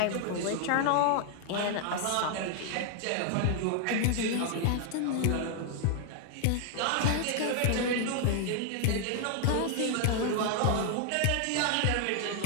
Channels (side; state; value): both; different; correlation 0.00